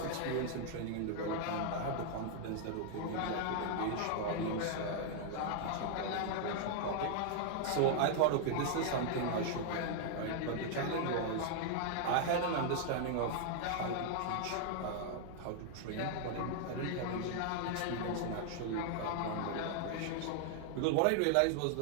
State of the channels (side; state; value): both; different; correlation 0.00